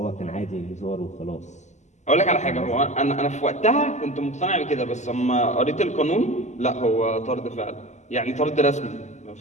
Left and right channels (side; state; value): right; late; 0.34 ms